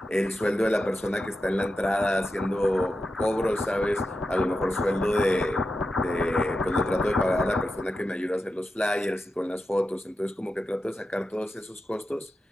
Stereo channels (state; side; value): normal; both; correlation 0.90